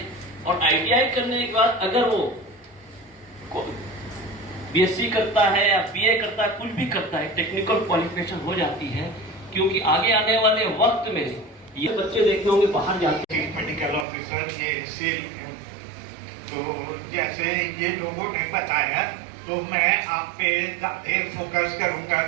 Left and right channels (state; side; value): drops out; left; at 14.1 s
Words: और आईटीआई करने के बाद अगर वो बीएससी करता है या बीए करता है, कुछ भी करता है, टेक्निकल क्वालिफिकेशन हो जाती है। क्योंकि आगे आने वाले वक्त में ये बच्चे देखते होंगे बाहर जाते हैं। मेडिकल ऑफिसर ये सेल, तो जैसे ये लोगों ने बताया, तो मैं आप पे ज़्यादा फोकस करूंगा